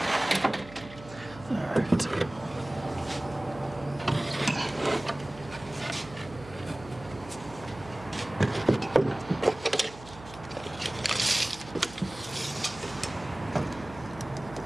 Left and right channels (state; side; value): noise; right; hum, 17 dB below the sound